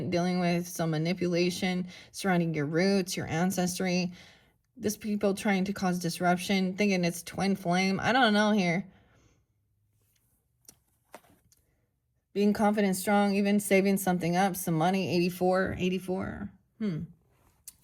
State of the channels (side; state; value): both; identical; correlation 1.00